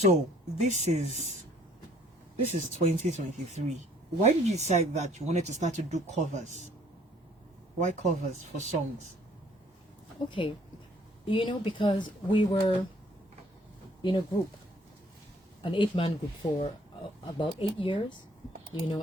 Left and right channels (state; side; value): normal; both; correlation 0.60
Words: this is 2023. Why did you decide that you wanted to start to do covers? Why covers for songs? Okay, because we were in a group, an 8-man group for about 8 years,